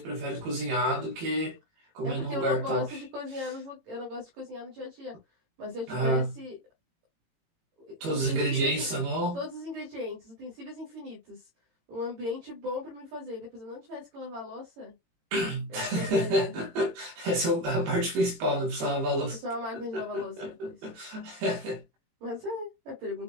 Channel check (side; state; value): left; late; 18 ms